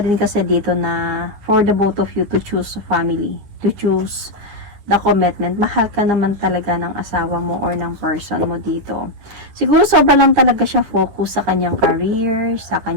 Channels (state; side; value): late; left; 10 ms